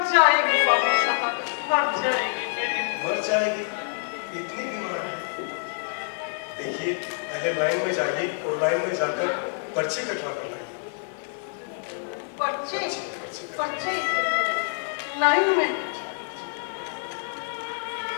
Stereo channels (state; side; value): silent; right; 59 dB below the other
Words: जाएगी बाबू साहब, मर जाएगी मेरी। मर जाएगी? इतनी बीमार है? देखिए, पहले लाइन में जाइए और लाइन में जाकर पर्ची कटवा कर लाइए। पर्ची? पर्ची? लाइन में?